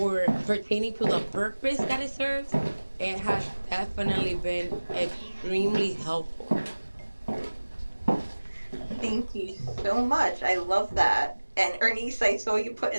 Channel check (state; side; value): inverted; both; correlation -1.00